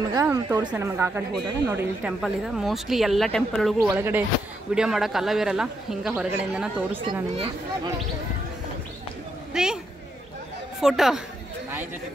ತೋರಿಸ್ತೇನೆ ನಮಗೆ ಆ ಕಡೆ ಹೋದಾಗ. ನೋಡಿ ಇಲ್ಲಿ ಟೆಂಪಲ್ ಇದೆ. ಮೋಸ್ಟ್ಲಿ ಎಲ್ಲ ಟೆಂಪಲ್ ಒಳಗೂ ಒಳಗಡೆ ವಿಡಿಯೋ ಮಾಡೋಕೆ ಅಲ್ಲವಿರಲ್ಲ, ಹಿಂಗೆ ಹೊರಗಡೆಯಿಂದನೇ ತೋರಿಸ್ತೀನಿ ನಾನು ನಿಮಗೆ. ರೀ ಫೋಟೋ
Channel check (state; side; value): normal; both; correlation 0.80